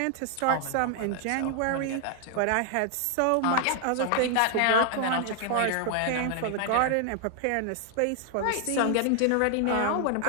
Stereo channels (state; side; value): different; both; correlation 0.00